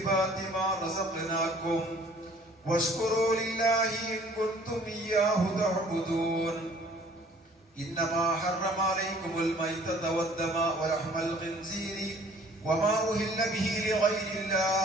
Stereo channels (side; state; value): both; normal; correlation 0.54